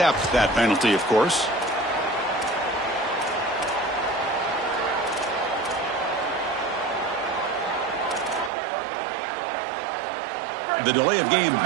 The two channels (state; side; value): drops out; left; at 8.5 s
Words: that penalty, of course. The delay of game